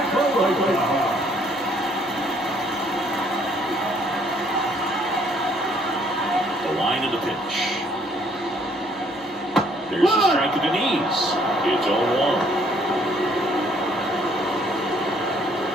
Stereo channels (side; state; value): both; normal; correlation 0.64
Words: The line of the pitch. There's a strike to the knees. It's 0-1.